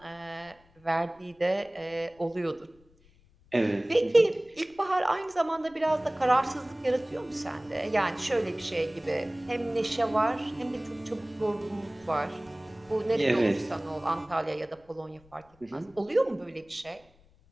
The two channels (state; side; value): noise; left; rumble, 30 dB below the sound